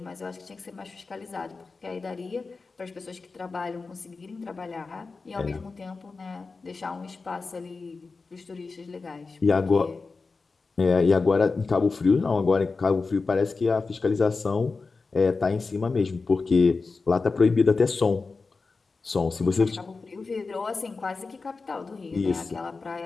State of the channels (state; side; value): quieter; right; 4.2 dB